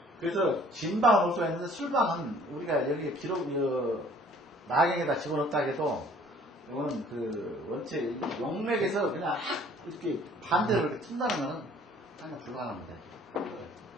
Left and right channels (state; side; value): normal; both; correlation 0.55